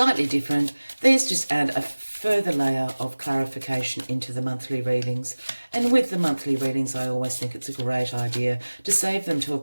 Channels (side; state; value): both; inverted; correlation -1.00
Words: different. These just add a further layer of clarification into the monthly readings. And with the monthly readings, I always think it's a great idea to save them to a